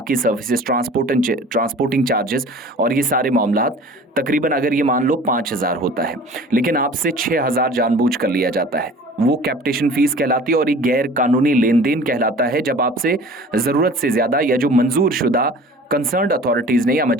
सर्विसेज, ट्रांसपोर्टिंग चार्जेस और ये सारे मामलात तकरीबन अगर ये मान लो 5,000 होता है, लेकिन आपसे 6,000 जानबूझ कर लिया जाता है, वो कैपिटेशन फीस कहलाती है। और ये गैर कानूनी लेन देन कहलाता है जब आपसे ज़रूरत से ज़्यादा या जो मंजूर शुदा कंसर्न्ड अथॉरिटीज़ ने या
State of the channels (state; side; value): normal; both; correlation 0.44